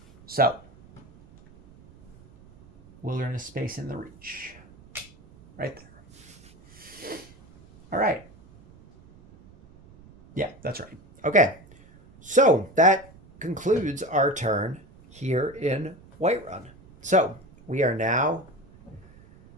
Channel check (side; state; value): right; noise; rumble, 24 dB below the sound